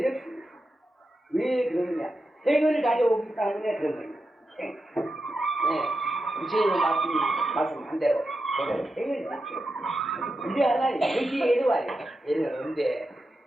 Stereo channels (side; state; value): both; normal; correlation 0.89